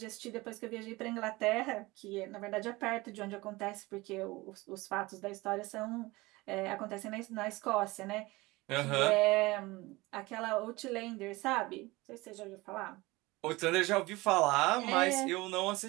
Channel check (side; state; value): left; quieter; 21.6 dB